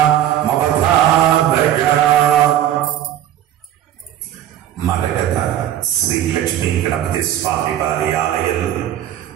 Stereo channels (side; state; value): left; quieter; 11.6 dB